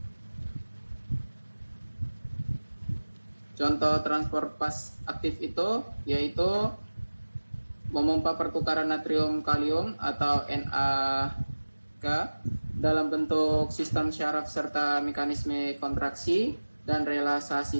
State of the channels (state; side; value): inverted; both; correlation -1.00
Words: Contoh transport pas aktif itu yaitu memompa pertukaran natrium kalium atau NaK dalam bentuk sistem syaraf serta mekanisme kontraksi dan relaksasi